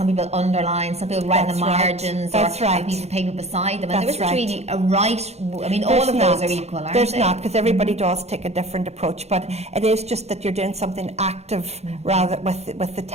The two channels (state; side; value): late; left; 0.31 ms